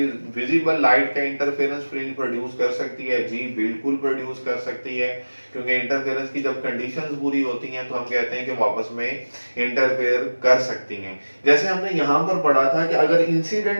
visible light का इंटरफेरेंस फ्रिंज प्रोड्यूस कर सकती है? जी बिल्कुल प्रोड्यूस कर सकती है, क्योंकि इंटरफेरेंस की जब कंडीशंस पूरी होती हैं तो हम कहते हैं कि वापस में इंटरफेयर कर सकती हैं। जैसे हमने यहाँ पर पढ़ा था कि अगर इंसिडेंट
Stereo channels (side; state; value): both; inverted; correlation -1.00